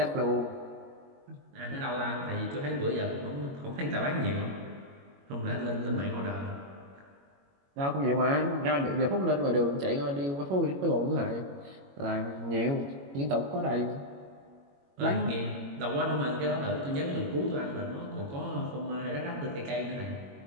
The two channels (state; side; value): late; left; 21 ms